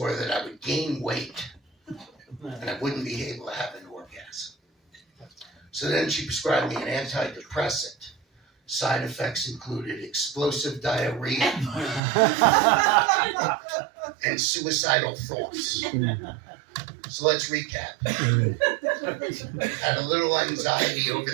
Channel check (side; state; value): left; drops out; at 12.0 s